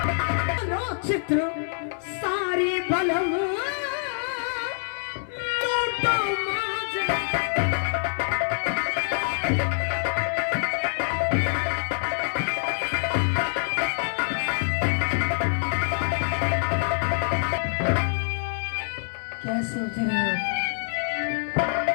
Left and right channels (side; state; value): right; silent; digital silence